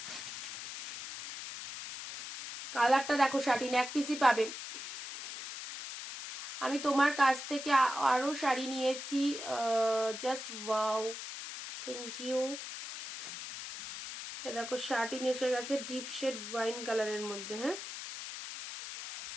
কালারটা দেখো, শার্টিন এক পিসই পাবে। আমি তোমার কাছ থেকে আরো শাড়ি নিয়েছি, জাস্ট ওয়াও, থ্যাংক ইউ। দেখো শার্টিন এসে গেছে ডিপ শেড ওয়াইন কালারের মধ্যে, হ্যাঁ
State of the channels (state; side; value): noise; left; hiss, 8 dB below the sound